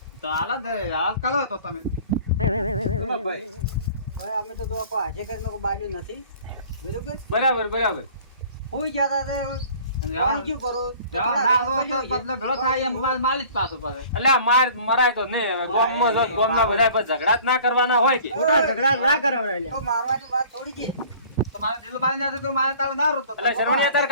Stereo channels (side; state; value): both; inverted; correlation -0.48